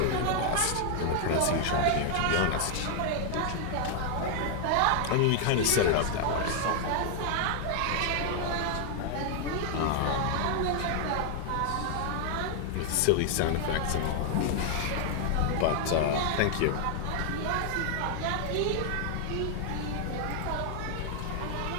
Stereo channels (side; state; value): both; different; correlation 0.00